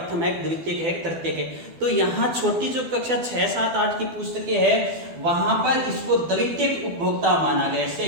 है, द्वितीयक है, तृतीयक है। तो यहाँ छोटी जो कक्षा 6, 7, 8 की पुस्तकें है वहां पर इसको द्वितीयक उपभोक्ता माना गया है,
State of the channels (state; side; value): late; left; 12 ms